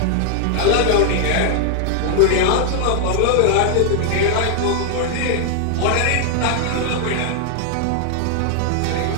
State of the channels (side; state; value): both; different; correlation 0.00